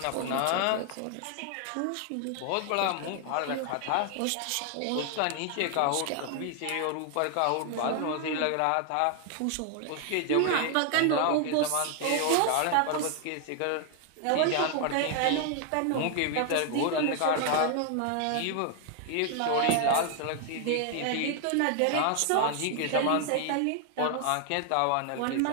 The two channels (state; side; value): different; both; correlation 0.00